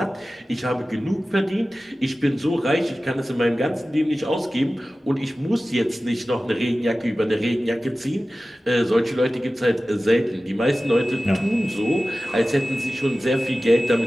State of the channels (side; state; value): both; normal; correlation 0.96